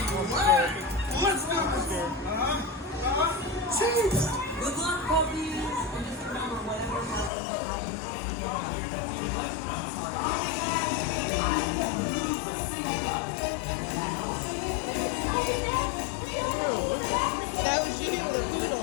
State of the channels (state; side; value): drops out; right; at 7.3 s